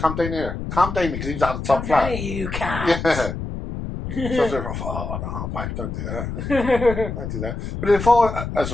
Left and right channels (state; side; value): noise; left; rumble, 6 dB below the sound